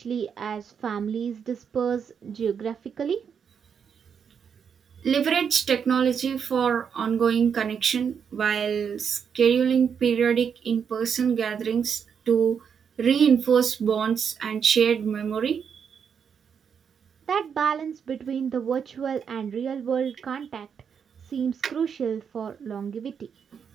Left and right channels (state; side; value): quieter; left; 7.1 dB